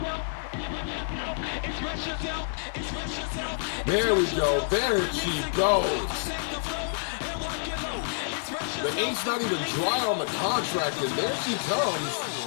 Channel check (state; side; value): silent; right; digital silence